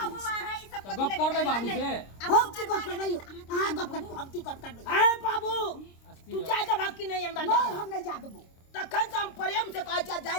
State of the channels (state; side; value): late; right; 26 ms